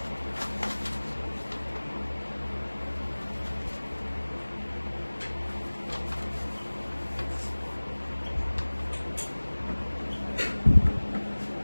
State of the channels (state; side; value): inverted; both; correlation -1.00